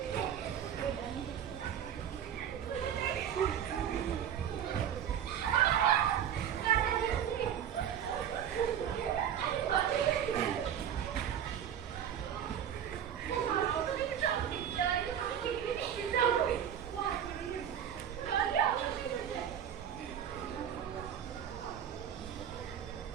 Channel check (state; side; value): quieter; left; 9.4 dB